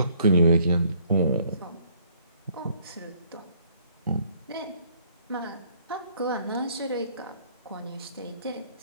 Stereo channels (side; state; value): both; inverted; correlation -0.63